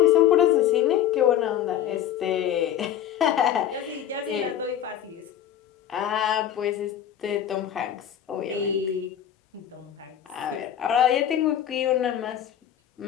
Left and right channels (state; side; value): quieter; right; 10.3 dB